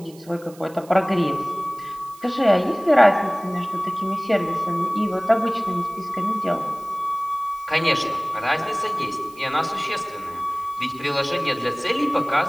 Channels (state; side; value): noise; right; hiss, 24 dB below the sound